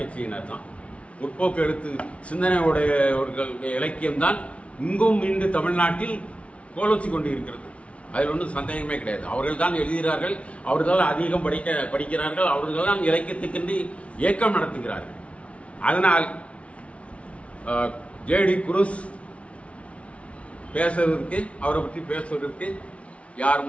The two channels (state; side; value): late; right; 0.063 ms